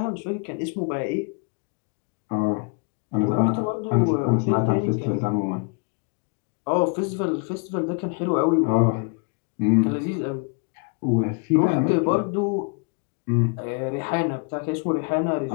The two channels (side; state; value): right; quieter; 36.5 dB